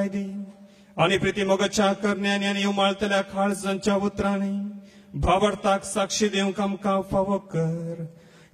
दी आनी प्रिती मोगाच्या करण्यांनी आनी उमाळतल्या काळजांच्या उतरांनी भावार्थाक साक्षी दिवंक आमकां फावो कर.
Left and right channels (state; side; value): identical; both; correlation 1.00